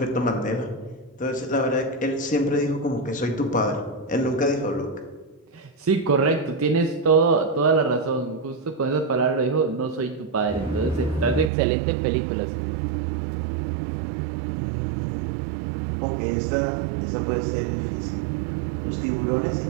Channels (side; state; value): left; drops out; at 11.5 s